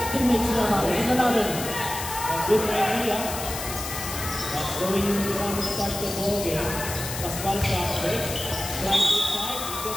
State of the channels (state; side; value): noise; left; hiss, 7 dB below the sound